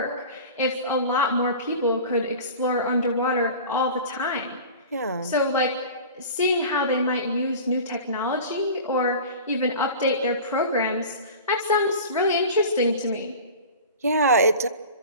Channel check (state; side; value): inverted; both; correlation -0.37